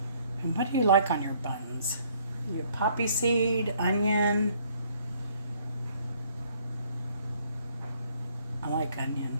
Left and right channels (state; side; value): inverted; both; correlation -0.63